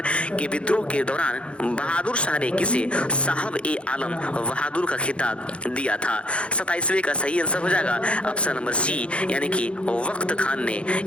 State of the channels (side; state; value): right; late; 0.059 ms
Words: के विद्रोह के दौरान बहादुर शाह ने किसे साहब ए आलम बहादुर का खिताब दिया था? 27वें का सही आंसर हो जाएगा ऑप्शन नंबर सी, यानी कि वक्त खान ने